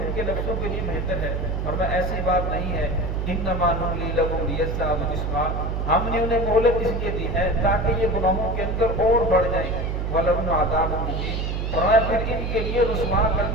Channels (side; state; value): right; noise; hum, 1 dB below the sound